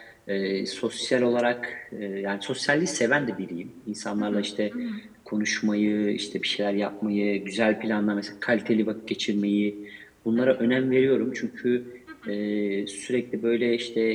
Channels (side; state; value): both; identical; correlation 1.00